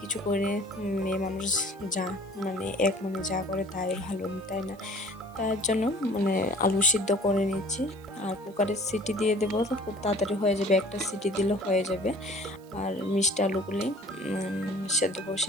করে মেয়ে মানুষ যা মানে এক মনে যা করে তাই ভালো, তাই না? তার জন্য মানে আলু সিদ্ধ করে নিচ্ছি, আর কুকারের সিটি দিয়ে দেবো তো খুব তাড়াতাড়ি হয়ে যাবে, একটা সিটি দিলে হয়ে যাবে। আর মিষ্টি আলুগুলি সেদ্ধ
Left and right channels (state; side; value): noise; right; hiss, 28 dB below the sound